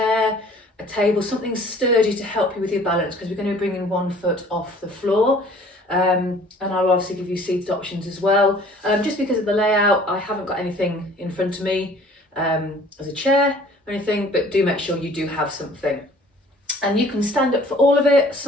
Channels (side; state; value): both; normal; correlation 0.52